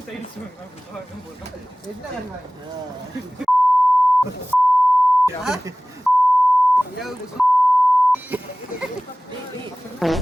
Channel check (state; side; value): normal; both; correlation 0.98